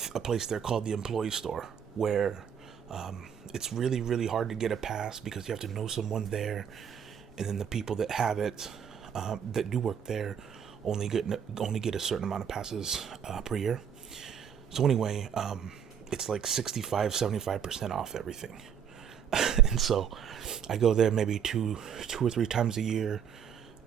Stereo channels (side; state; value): left; quieter; 8.0 dB